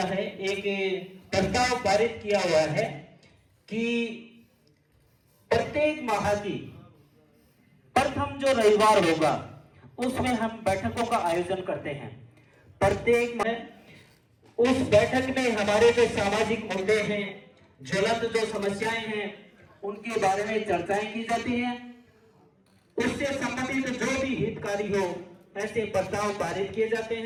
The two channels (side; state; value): both; identical; correlation 1.00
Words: है, एक प्रस्ताव पारित किया हुआ है कि प्रत्येक माह की प्रथम जो रविवार होगा उसमें हम बैठकों का आयोजन करते हैं। प्रत्येक माह उस बैठक में हमारे जो सामाजिक मुद्दे हैं, ज्वलंत जो समस्याएं हैं, उनके बारे में चर्चाएं की जाती हैं। उससे संबंधित जो भी हितकारी हो, ऐसे प्रस्ताव पारित किए जाते